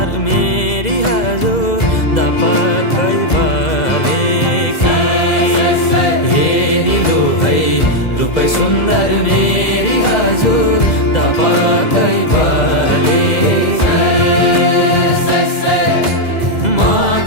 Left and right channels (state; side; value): late; right; 2.0 ms